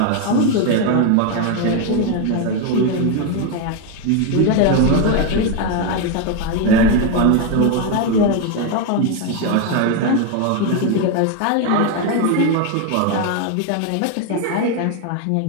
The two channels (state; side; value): different; both; correlation 0.01